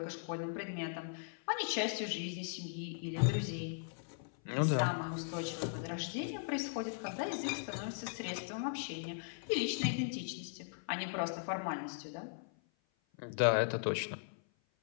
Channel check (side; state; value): right; silent; 52 dB below the other